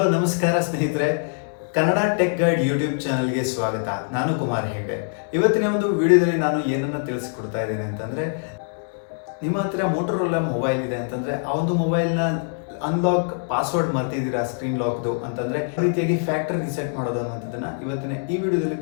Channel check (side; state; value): right; silent; digital silence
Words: ನಮಸ್ಕಾರ ಸ್ನೇಹಿತರೆ, Kannada tech guide YouTube ಚಾನಲ್ಗೆ ಸ್ವಾಗತ. ನಾನು ಕುಮಾರ್ ಹೆಗ್ಡೆ. ಇವತ್ತಿನ ಒಂದು ವಿಡಿಯೋದಲ್ಲಿ ನಾನು ಏನನ್ನು ತಿಳಿಸ್ಕೊಡ್ತಾ ಇದ್ದೇನೆ ಅಂತಂದರೆ, ನಿಮ್ಮ ಹತ್ರ ಮೋಟೋರೋಲಾ ಮೊಬೈಲ್ ಇದೆ ಅಂತಂದರೆ ಆ ಒಂದು ಮೊಬೈಲ್ನ ಅನ್ಲಾಕ್ ಪಾಸ್ವರ್ಡ್ ಮರ್ತಿದ್ದೀರಾ ಸ್ಕ್ರೀನ್ ಲಾಕ್ದು ಅಂತಂದರೆ ಈ ರೀತಿಯಾಗಿ ಫ್ಯಾಕ್ಟರಿ ರಿಸೆಟ್ ಮಾಡೋದು ಅನ್ನೋದನ್ನು ಇವತ್ತಿನ ಈ ವಿಡಿಯೋದಲ್ಲಿ